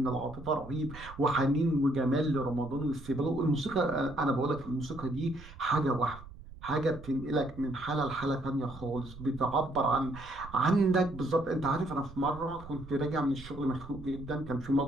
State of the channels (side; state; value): right; noise; rumble, 17 dB below the sound